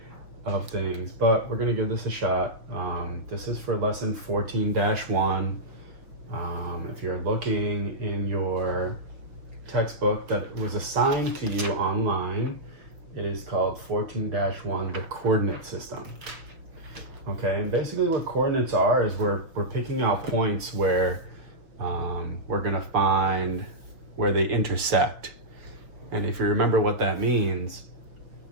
of things, but we're gonna give this a shot. This is for lesson 14-1. If you're looking in your textbook that was assigned to you online, it is called 14-1, the coordinate system. Okay, and basically what coordinates are is we're picking out points where we're gonna find where they intersect. And if you remember what that means,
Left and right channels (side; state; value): left; late; 6.0 ms